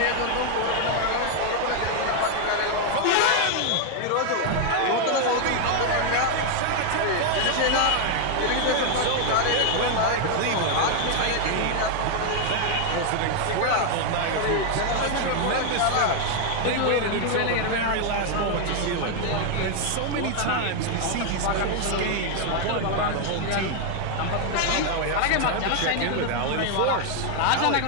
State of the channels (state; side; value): different; both; correlation 0.00